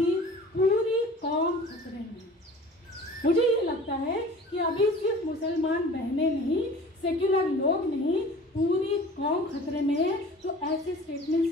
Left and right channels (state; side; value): normal; both; correlation 0.43